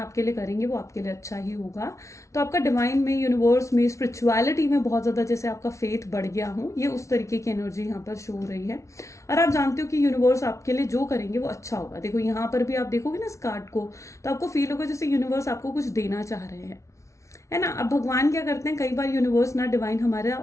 लिए करेंगे वो आपके लिए अच्छा ही होगा। तो आपका डिवाइन में, यूनिवर्स में, स्पिरिचुअलिटी में बहुत ज़्यादा जैसे आपका फेथ बढ़ गया हो, ये उस तरीके की एनर्जी यहाँ पर शो हो रही है। और आप जानते हो कि यूनिवर्स आपके लिए जो करेंगे वो अच्छा होगा। देखो यहाँ पर भी आप देखोगे ना इस कार्ड को, तो आपको फील होगा जैसे यूनिवर्स आपको कुछ देना चाह रहे हैं, है ना। अब भगवान क्या करते हैं, कई बार यूनिवर्स ना डिवाइन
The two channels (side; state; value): right; late; 0.14 ms